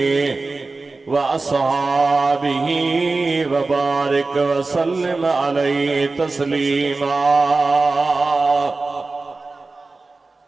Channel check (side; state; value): left; quieter; 3.6 dB